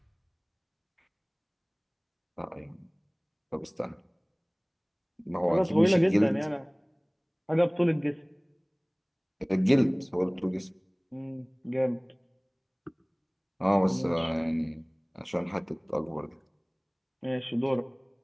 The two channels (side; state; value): both; identical; correlation 1.00